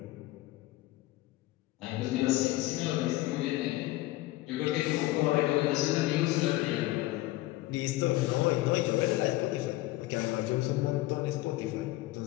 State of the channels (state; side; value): quieter; right; 17.9 dB